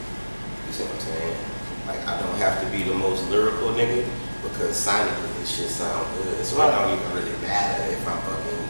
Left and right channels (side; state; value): both; inverted; correlation -1.00